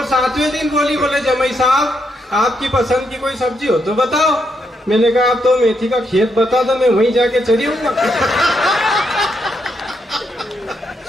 7वें दिन बोले जमाई साहब, आपकी पसंद की कोई सब्जी हो तो बताओ। मैंने कहा आप तो मेथी का खेत बता दो, मैं वहीं जाके चली हूँ।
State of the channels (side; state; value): both; normal; correlation 0.79